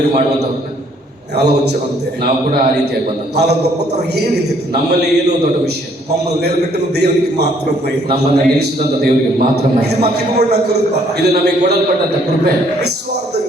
ಮಾಡುವಂತವ್ರನ್ನ అలా వచ్చామంతే. ನಾವು ಕೂಡ ಆ ರೀತಿಯಾಗಿ ಬಂದಂತ. వాళ్ళ గొప్పతనం ఏమీ లేదు, ನಮ್ಮಲ್ಲಿ ಏನು ದೊಡ್ಡ ವಿಷಯ, మమ్మల్ని నిలబెట్టిన దేవునికి మాత్రమే, ನಮ್ಮನ್ನ ನಿಲ್ಲಿಸಿದಂತ ದೇವರಿಗೆ ಮಾತ್ರ ಮಹಿಮೆ. ఇది మాకు ఇవ్వబడిన కృప. ಇದು ನಮಗೆ ಕೊಡಲ್ಪಟ್ಟಂತ ಕೃಪೆ.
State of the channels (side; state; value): both; normal; correlation 0.64